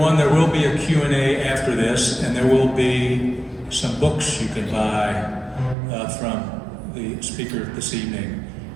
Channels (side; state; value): left; drops out; at 5.8 s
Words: there will be a Q&A after this, and there will be some books you can buy from the speaker this evening.